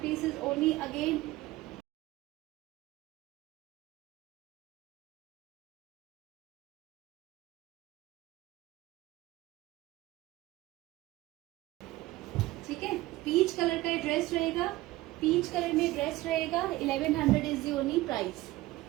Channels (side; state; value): left; quieter; 18.1 dB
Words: piece is only again ठीक है। पीच कलर का ड्रेस रहेगा, पीच कलर में ड्रेस रहेगा। 1100 is the only price,